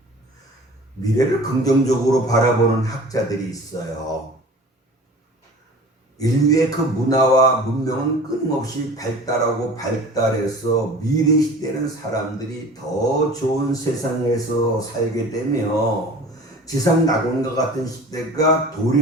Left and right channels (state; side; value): normal; both; correlation 0.42